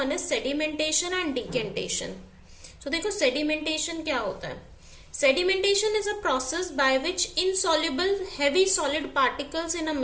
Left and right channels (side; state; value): both; identical; correlation 1.00